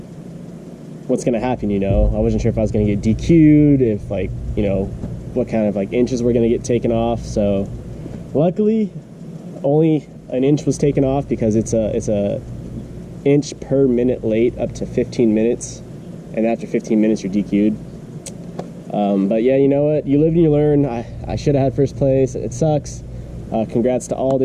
what's gonna happen? You know, I wasn't sure if I was gonna get DQ'd, if like, you know, what kind of like inches were gonna get taken off." So luckily, only an inch was taken off, because it's a inch per minute late up to 15 minutes, and after 15 minutes you're DQ'd. But yeah, you know what? You live and you learn. I should have had first place. It sucks. Congrats to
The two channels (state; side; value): identical; both; correlation 1.00